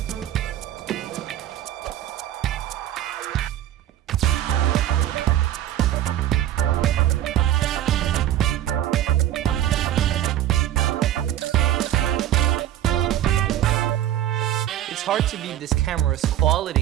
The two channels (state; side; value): quieter; left; 12.3 dB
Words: It's hard to beat this camera's